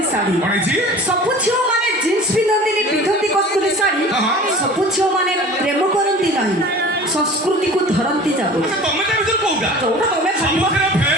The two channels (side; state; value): both; normal; correlation 0.42